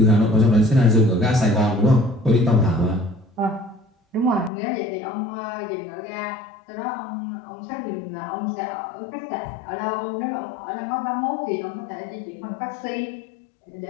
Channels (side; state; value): right; drops out; at 4.5 s